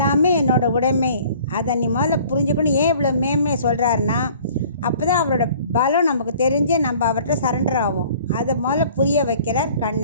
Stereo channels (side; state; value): both; inverted; correlation -0.51